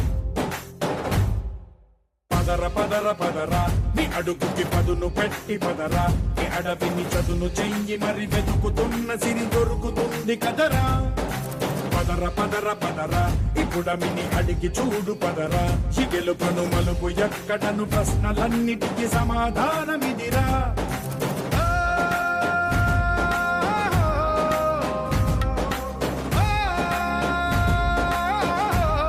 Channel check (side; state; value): both; identical; correlation 1.00